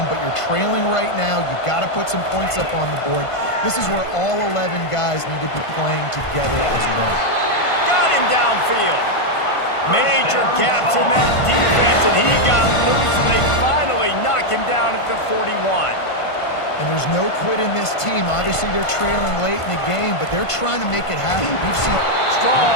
but you're trailing right now. You've got to put some points up on the board. This is where all 11 guys need to be playing together as one. Got him downfield. Major gaps in that defense, and he got loose, and they finally knock him down at the 41. And there's no quit in this team. Obviously, they're trailing late in the game, but they're trying to make it happen. We've seen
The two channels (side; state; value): right; late; 1.5 ms